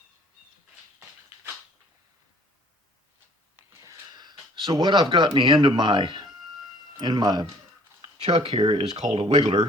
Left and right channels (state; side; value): normal; both; correlation 0.55